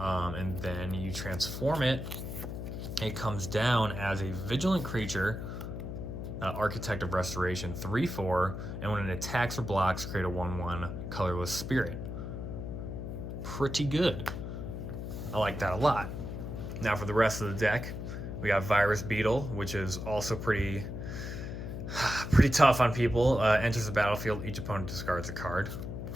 then you transform it. It comes down as a vigilant creature, Architect of Restoration, 3/4, and when it attacks or blocks, create a 1/1 colorless spirit. Pretty good. I like that a lot. Now for the rest of the deck, we got Virus Beetle, which is also pretty tough on people. Enters the battlefield, each opponent discards a card.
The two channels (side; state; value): left; noise; hum, 6 dB below the sound